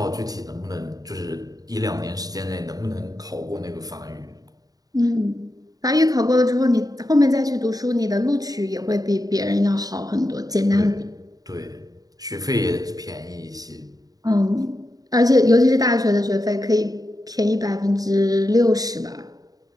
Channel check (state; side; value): late; left; 0.18 ms